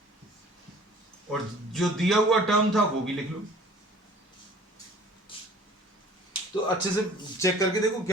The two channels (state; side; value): normal; both; correlation 0.49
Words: और जो दिया हुआ टर्म था वो भी लिख लो। तो अच्छे से चेक करके देखो